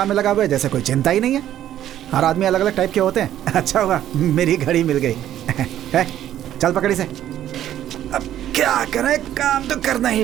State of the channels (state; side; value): quieter; left; 11.8 dB